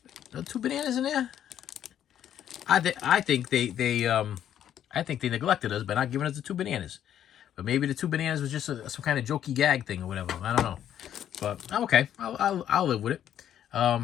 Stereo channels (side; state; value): right; quieter; 10.4 dB